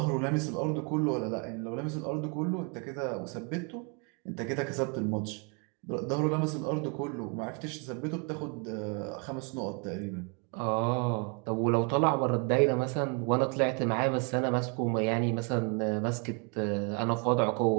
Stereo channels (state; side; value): quieter; left; 35.0 dB